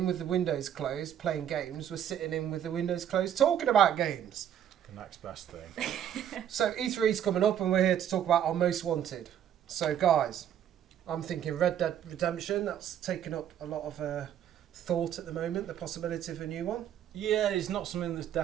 with the windows closed playing games, we're sitting in with the windows closed talking about games. The next best thing. So E3's coming up and we're here to talk about our most wanted. So guys, I'm thinking Red Dead Redemption. That's taken up a lot of thought at the moment, the possibility of a new one. Yeah, it's not something that's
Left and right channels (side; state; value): left; quieter; 9.9 dB